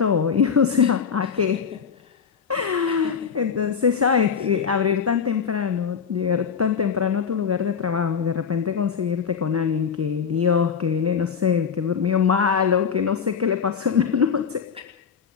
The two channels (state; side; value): quieter; right; 6.7 dB